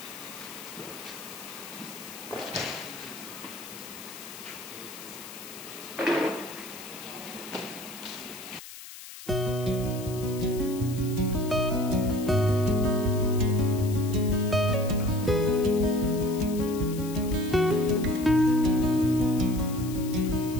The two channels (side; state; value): left; noise; hiss, 14 dB below the sound